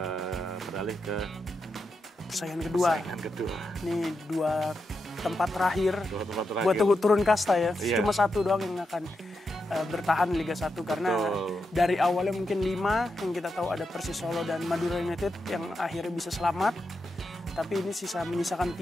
beralih ke persaingan kedua. Ini 2 tempat terakhir buat turun kasta ya. Cuma 1 doang yang akan bertahan Liga 1 karena dari awalnya mungkin 5 yang kita tahu ada Persis Solo dan Madura United yang akhirnya bisa selamat, tapi ini menyisakan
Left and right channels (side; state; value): both; normal; correlation 0.86